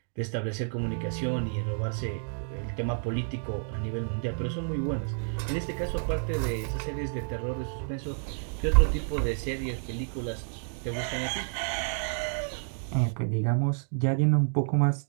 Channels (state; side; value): silent; left; digital silence